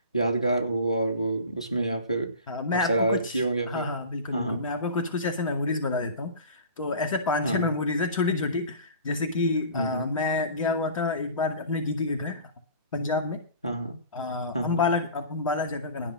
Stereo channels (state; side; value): inverted; both; correlation -0.39